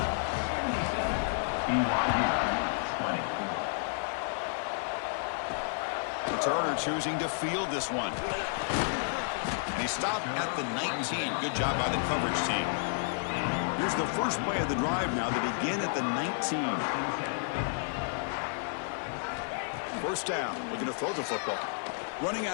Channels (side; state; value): right; silent; 57 dB below the other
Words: Turner choosing to field this one. And he stopped at the 19. Good job by the coverage team. Here's the first play of the drive now. They begin at the 19. 1st down. Looking to throw the football. Running